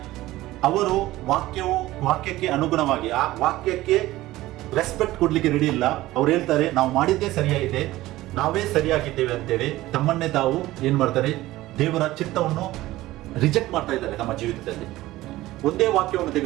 ಅವರು ವಾಕ್ಯಕ್ಕೆ ಅನುಗುಣವಾಗಿ ಆ ವಾಕ್ಯಕ್ಕೆ ರೆಸ್ಪೆಕ್ಟ್ ಕೊಡ್ಲಿಕ್ಕೆ ರೆಡಿ ಇಲ್ಲ. ಅವ್ರು ಹೇಳ್ತಾರೆ ನಾವು ಮಾಡಿದ್ದೇ ಸರಿಯಾಗಿದೆ, ನಾವೇ ಸರಿಯಾಗಿದ್ದೇವೆ ಅಂತೇಳಿ ತಮ್ಮನ್ನೇ ತಾವು ಏನ್ ಮಾಡ್ತಾರೆ, ದೇವರ ಚಿತ್ತವನ್ನು ರಿಜೆಕ್ಟ್ ಮಾಡ್ತಾ ಇದ್ದಾರೆ ತಮ್ಮ ಜೀವಿತದಲ್ಲಿ. ಒಂದೇ ವಾಕ್ಯವನ್ನು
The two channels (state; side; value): quieter; left; 16.9 dB